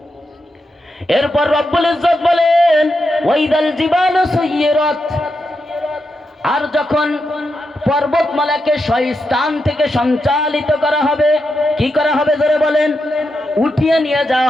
এরপর রব্বুল ইজ্জত বলেন ওয়াইদাল জিবালু সুয়্যিরাত, আর যখন পর্বতমালাকে স্থান থেকে সঞ্চালিত করা হবে, কি করা হবে জোরে বলেন? উঠিয়ে নিয়ে যাওয়া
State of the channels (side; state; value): both; normal; correlation 0.85